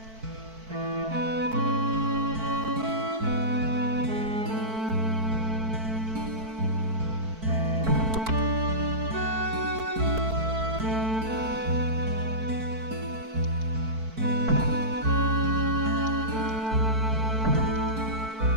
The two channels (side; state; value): left; late; 4.5 ms